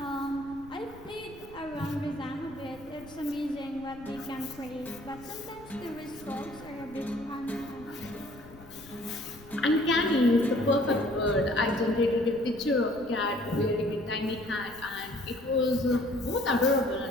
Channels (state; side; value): noise; left; rumble, 20 dB below the sound